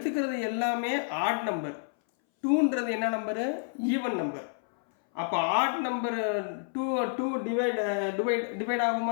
எல்லாமே ஆட் நம்பர். 2ன்றது என்ன நம்பரு? Even number. அப்போ ஆட் நம்பர் 2 டிவைட்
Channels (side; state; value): right; silent; 58 dB below the other